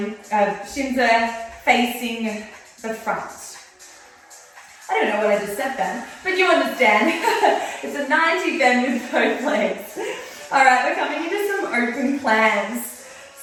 shins are facing the front. I don't know what I just said then, but you understand. It's a 90 bend with both legs. All right, we're coming into some open plans.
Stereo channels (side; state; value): both; identical; correlation 1.00